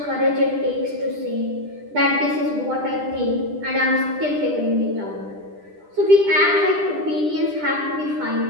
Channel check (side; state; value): left; late; 10 ms